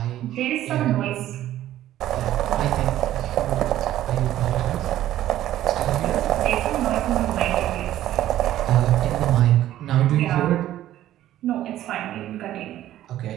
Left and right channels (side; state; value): left; quieter; 13.2 dB